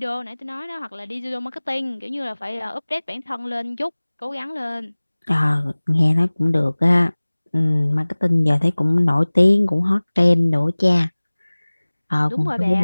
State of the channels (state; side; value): inverted; both; correlation -1.00